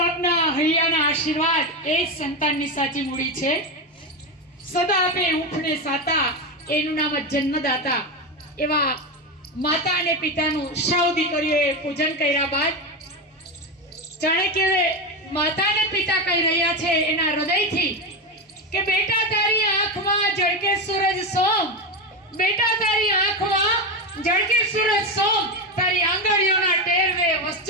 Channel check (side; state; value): both; normal; correlation 0.15